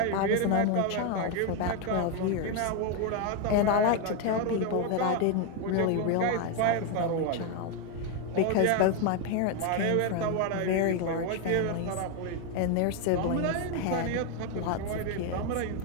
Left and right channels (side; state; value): both; different; correlation 0.01